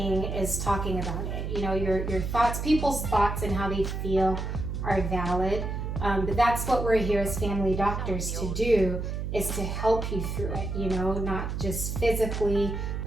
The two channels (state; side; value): noise; right; hum, 3 dB below the sound